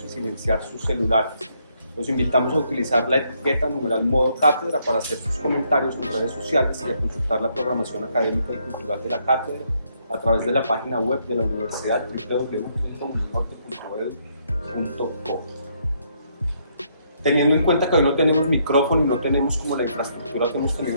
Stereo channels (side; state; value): both; inverted; correlation -0.72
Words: y silenciar sus celulares. Los invitamos a utilizar la etiqueta #modo cátedra para hacer sus comentarios en redes sociales y a consultar la programación académica y cultural de la cátedra a través de la página web de la universidad www.uninorte.edu.co. Teniendo en cuenta que hoy no tenemos micrófono y no tenemos como la infraestructura que hemos tenido